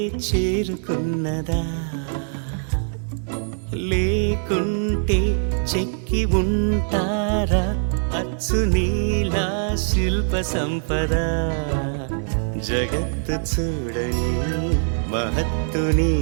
చేరుకున్నదా లేకుంటే చెక్కి ఉంటారా అచ్చు నీలా శిల్ప సంపద జగత్తు చూడని మహత్తు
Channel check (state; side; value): silent; left; digital silence